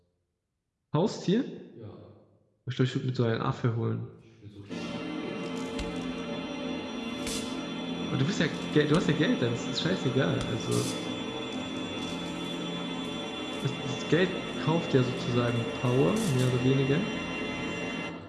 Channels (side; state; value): both; identical; correlation 1.00